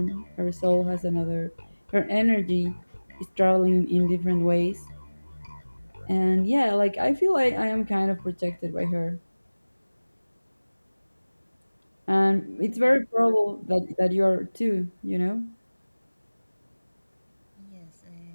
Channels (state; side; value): inverted; both; correlation -1.00